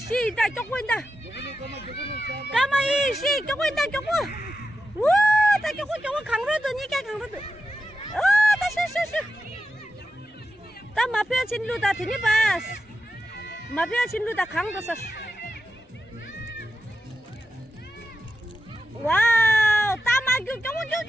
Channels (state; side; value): normal; both; correlation 0.89